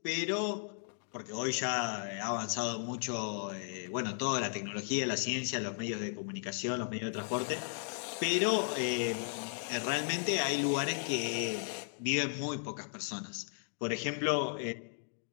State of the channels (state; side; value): silent; right; digital silence